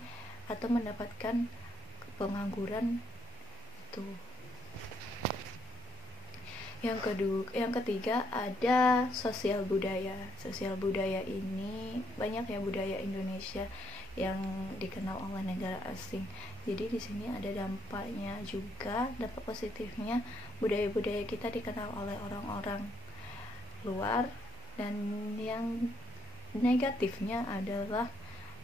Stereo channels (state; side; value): normal; both; correlation 0.73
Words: atau mendapatkan pengangguran itu. Yang ketiga ada sosial budaya. Sosial budaya ini banyak ya budaya Indonesia yang dikenal oleh negara asing. Jadi di sini ada dampaknya juga, dampak positifnya, budaya-budaya kita dikenal oleh orang-orang luar, dan yang negatifnya adalah